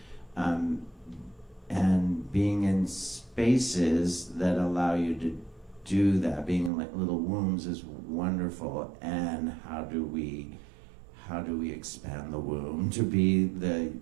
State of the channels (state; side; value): drops out; left; at 6.7 s